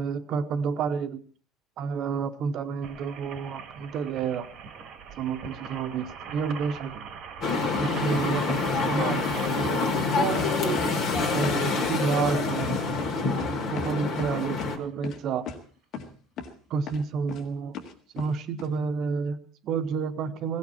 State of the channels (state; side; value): normal; both; correlation 0.52